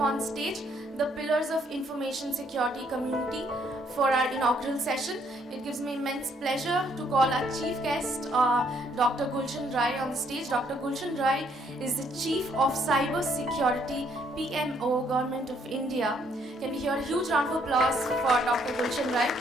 on stage the pillars of information security community for our inaugural session. It gives me immense pleasure to call our chief guest, Dr. Gulshan on the stage. Dr. Gulshan is the Chief of Cyber Security PMO, Government of India. Can we hear a huge round of applause for Dr. Gulshan?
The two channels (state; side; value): normal; both; correlation 0.68